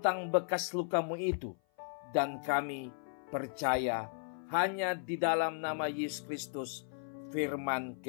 bekas luka-Mu itu, dan kami percaya hanya di dalam nama Yesus Kristus, firman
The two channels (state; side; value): silent; right; 54 dB below the other